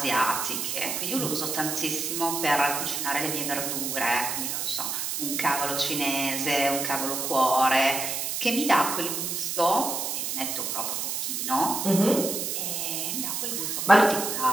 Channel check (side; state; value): right; noise; hiss, 2 dB below the sound